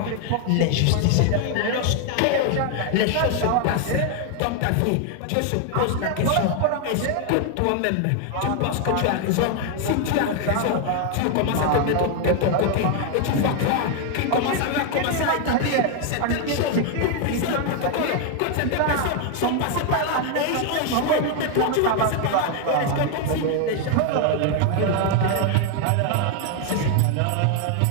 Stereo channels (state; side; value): different; both; correlation 0.00